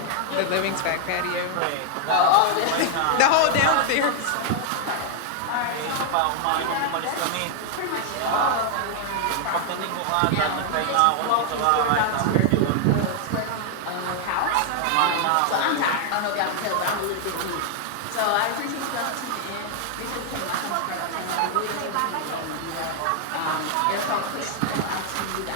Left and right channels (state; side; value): different; both; correlation 0.00